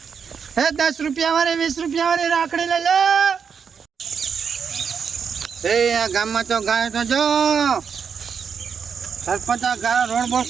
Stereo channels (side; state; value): left; quieter; 6.6 dB